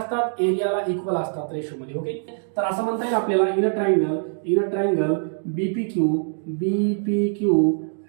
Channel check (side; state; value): left; silent; digital silence